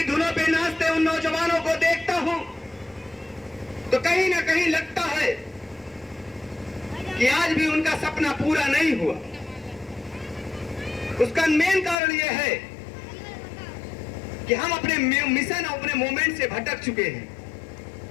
धुनों पे नाचते उन नौजवानों को देखता हूं तो कहीं ना कहीं लगता है कि आज भी उनका सपना पूरा नहीं हुआ। उसका मेन कारण यह है कि हम अपने मिशन और अपने मूवमेंट से भटक चुके हैं।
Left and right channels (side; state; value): right; drops out; at 12.0 s